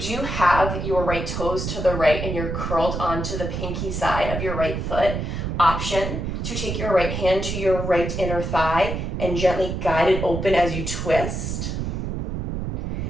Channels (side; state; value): right; noise; rumble, 3 dB below the sound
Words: do have your right toes to the right and you're curled onto the pinky side of your right foot, option to take your right hand to your right inner thigh and gently guide it open as you twist.